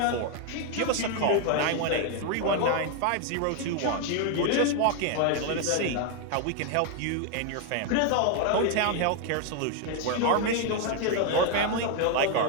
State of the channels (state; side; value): different; both; correlation 0.00